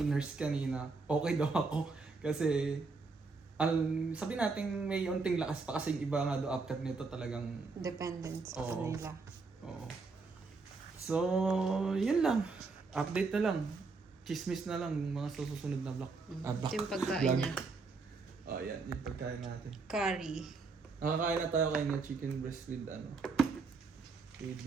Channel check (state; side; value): quieter; left; 4.2 dB